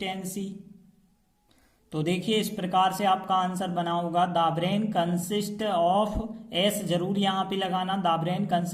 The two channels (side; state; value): both; identical; correlation 1.00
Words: तो देखिए इस प्रकार से आपका आंसर बना होगा, the brain consist of, S जरूर यहाँ पे लगाना, the brain